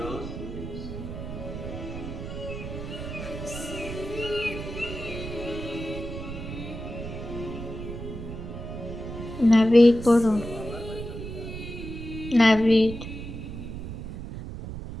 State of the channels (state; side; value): noise; right; rumble, 8 dB below the sound